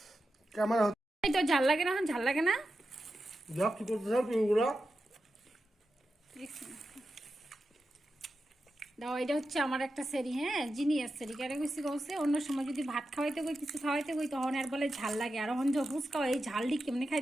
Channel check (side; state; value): both; normal; correlation 0.90